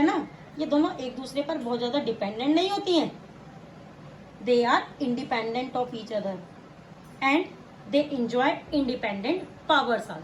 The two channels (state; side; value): identical; both; correlation 1.00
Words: ना, ये दोनों एक दूसरे पर बहुत ज्यादा डिपेंडेंट नहीं होती हैं. They are independent of each other and they enjoy independent powers